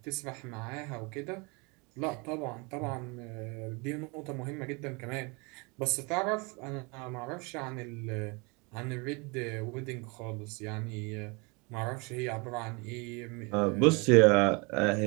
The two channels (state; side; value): quieter; left; 29.5 dB